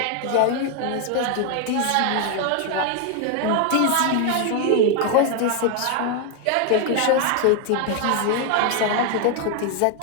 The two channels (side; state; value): both; different; correlation 0.01